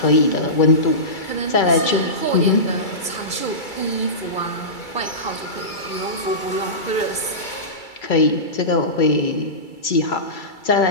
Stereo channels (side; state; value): right; late; 2.3 ms